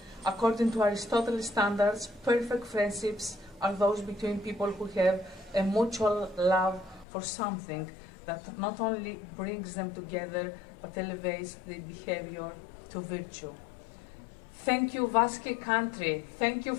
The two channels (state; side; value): drops out; right; at 7.1 s